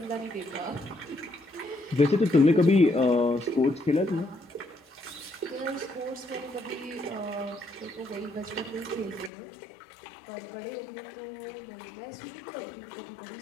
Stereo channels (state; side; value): drops out; right; at 9.3 s